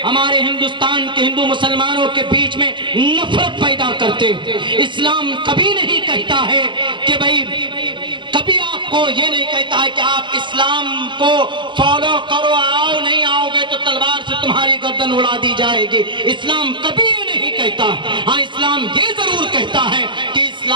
ہمارے ہندوستان کے ہندو مسلمانوں کے بیچ میں نفرت پیدا کرتے۔ اسلام کبھی نہیں کہتا ہے کہ بھائی، کبھی آپ کو یہ نہیں کہتا ہے کہ آپ اسلام کو فالو کرو، آؤ، نہیں آؤ گے تو تلوار سے تمہاری گردن اڑا دی جائے گی۔ اسلام کبھی یہ نہیں کہتا۔ ہاں، اسلام یہ ضرور کہتا ہے کہ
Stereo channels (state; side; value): late; left; 0.23 ms